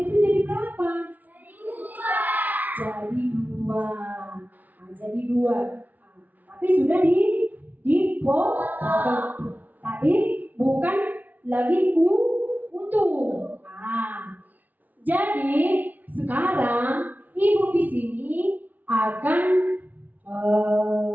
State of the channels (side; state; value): left; late; 0.079 ms